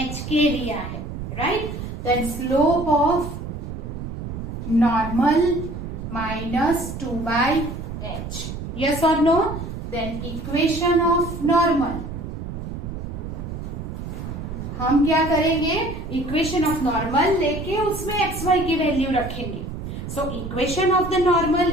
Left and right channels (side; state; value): right; noise; rumble, 7 dB below the sound